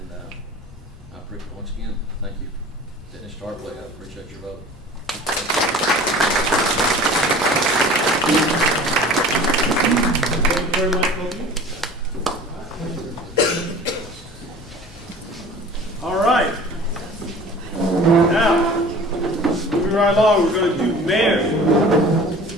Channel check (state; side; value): normal; both; correlation 0.43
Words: I appreciate, once again, thank you, Dennis Tarpley. I appreciate your vote. Thank you very much, Kobe. All right. Now, moving right along, we're going to do